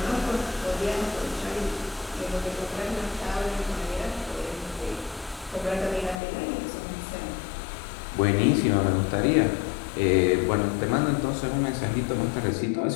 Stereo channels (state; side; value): drops out; right; at 6.2 s